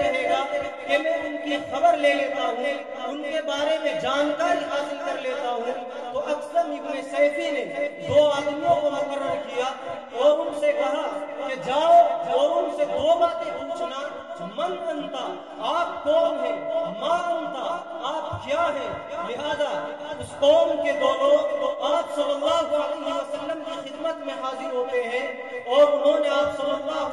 رہے گا کہ میں ان کی خبر لے لیتا ہوں، ان کے بارے میں جانکاری حاصل کر لیتا ہوں. تو اکثر ابن سیفی نے 2 آدمیوں کو مقرر کیا اور ان سے کہا کہ جاؤ اور ان سے 2 باتیں پوچھنا. من انتا، آپ کون ہیں؟ ما انتا، آپ کیا ہیں؟ لہذا اس قوم کے 2 لوگ آپ صلی اللہ علیہ وسلم کی خدمت میں حاضر ہوتے ہیں اور انہوں نے آپ صلی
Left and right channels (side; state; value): both; identical; correlation 1.00